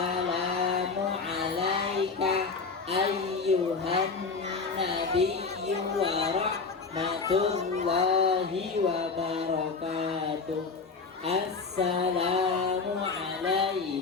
alaika ayyuhan nabiyyu wa rahmatullahi wa barakatuh. Assalamu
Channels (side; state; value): right; quieter; 4.6 dB